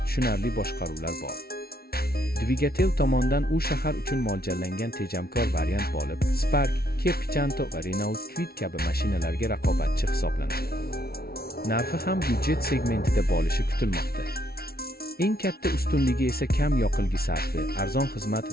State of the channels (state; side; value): late; right; 0.44 ms